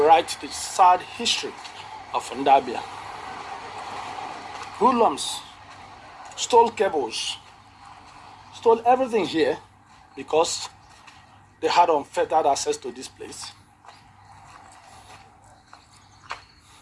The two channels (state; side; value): identical; both; correlation 1.00